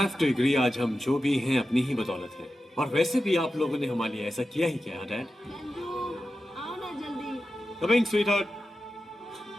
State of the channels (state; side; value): normal; both; correlation 0.92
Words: to agree, आज हम जो भी हैं अपनी ही बदौलत हैं। और वैसे भी आप लोगों ने हमारे लिए ऐसा किया ही क्या, Dad? आओ ना जल्दी। Coming, sweetheart.